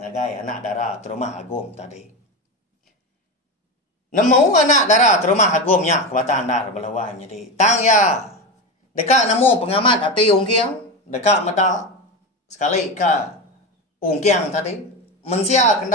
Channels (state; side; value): normal; both; correlation 0.20